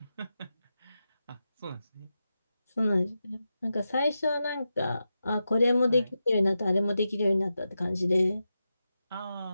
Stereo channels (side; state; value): both; inverted; correlation -0.90